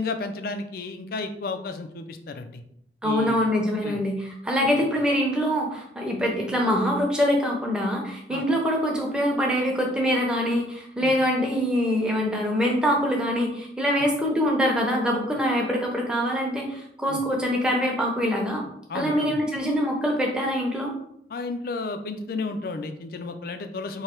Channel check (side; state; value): both; normal; correlation 0.60